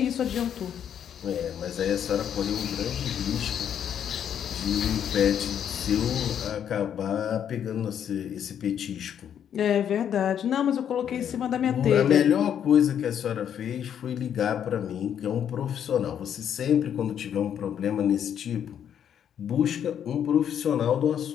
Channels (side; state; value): right; quieter; 9.1 dB